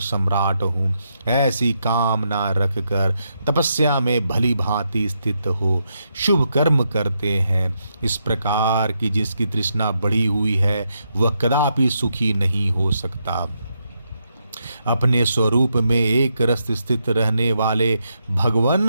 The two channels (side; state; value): both; inverted; correlation -0.81